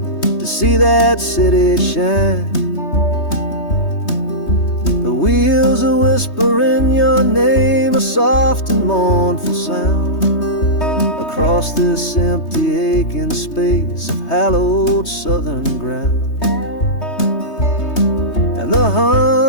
to see that city shine. The wheels are whispering your name, a soft and mournful sound, across this empty aching space of hallowed southern ground. And the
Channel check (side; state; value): right; late; 3.2 ms